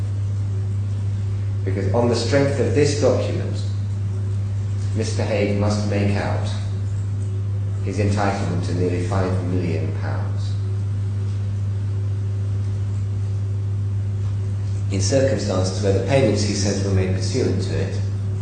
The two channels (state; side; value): identical; both; correlation 1.00